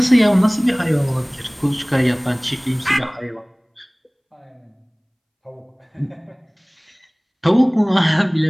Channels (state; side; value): identical; both; correlation 1.00